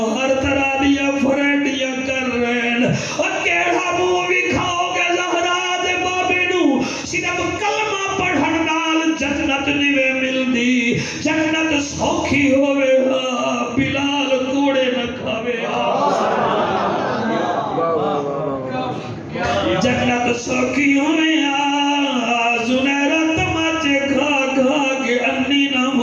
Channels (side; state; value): both; identical; correlation 1.00